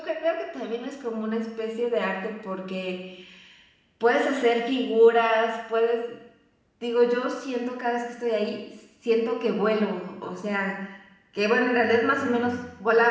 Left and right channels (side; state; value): both; identical; correlation 1.00